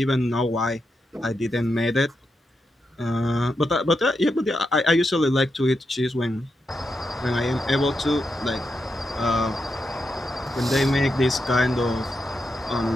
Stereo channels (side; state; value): both; normal; correlation 0.86